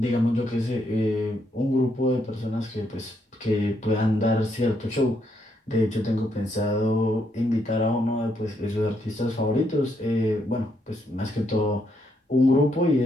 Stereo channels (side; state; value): both; normal; correlation 0.76